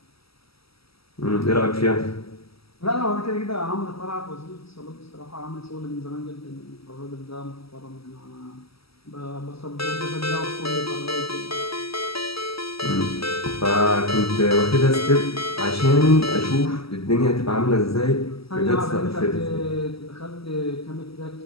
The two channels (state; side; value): late; right; 0.76 ms